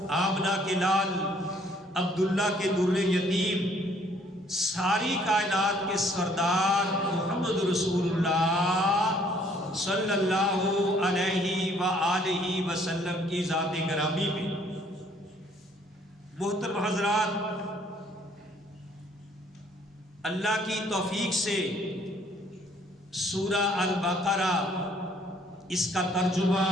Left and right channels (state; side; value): normal; both; correlation 0.62